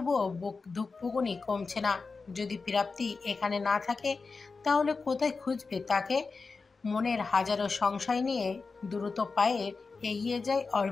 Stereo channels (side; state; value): right; quieter; 4.4 dB